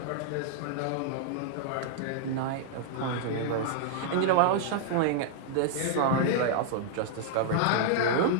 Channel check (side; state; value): both; different; correlation -0.01